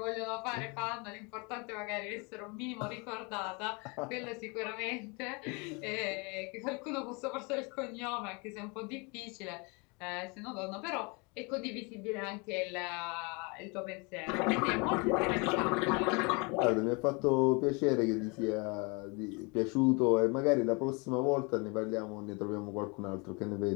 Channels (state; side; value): quieter; right; 30.6 dB